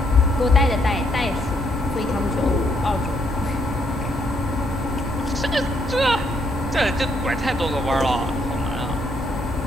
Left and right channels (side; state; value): both; normal; correlation 0.73